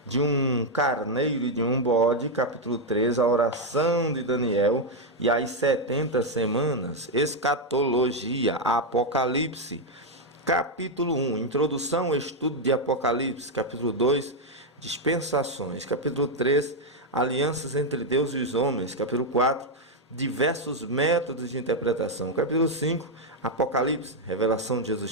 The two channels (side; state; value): both; normal; correlation 0.02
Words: de um carneiro e de um bode. Capítulo 3, a oração de Daniel e as 70 semanas. Escatologia, Apocalipse. Capítulo 1, introdução, estudo de Apocalipse. Capítulo 2, dispensações. Capítulo 3, alianças entre Deus e os homens. Capítulo 4, diversos métodos de interpretação. Capítulo 5, Apocalipse, revelação de